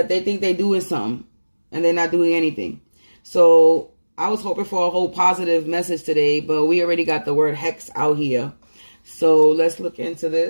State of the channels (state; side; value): inverted; both; correlation -1.00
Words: they think they're doing something and they're not doing anything. So I was hoping for a whole positive message today, but we already got the word hex out here. So let's look into